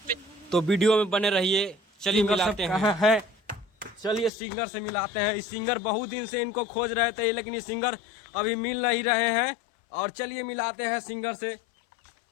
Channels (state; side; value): drops out; right; at 4.3 s